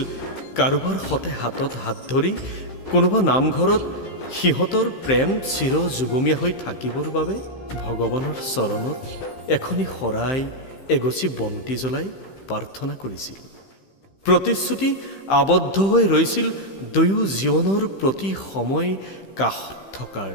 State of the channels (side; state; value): right; late; 15 ms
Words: কাৰোবাৰ সতে হাতত হাত ধৰি কোনোবা নামঘৰত সিহঁতৰ প্ৰেম চিৰ যুগমীয়া হৈ থাকিবৰ বাবে ভগৱানৰ চৰণত এখনি শৰাই এগছি বন্তি জ্বলাই প্ৰাৰ্থনা কৰিছিল। প্ৰতিশ্ৰুতি আবদ্ধ হৈ ৰৈছিল দুয়ো জীৱনৰ প্ৰতি সময় কাষত থকাৰ।